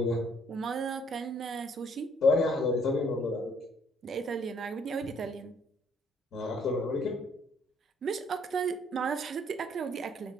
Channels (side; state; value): both; normal; correlation 0.64